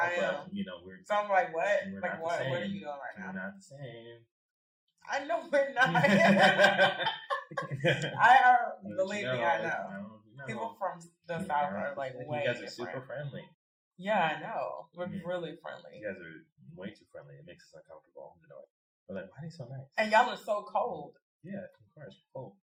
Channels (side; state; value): both; identical; correlation 1.00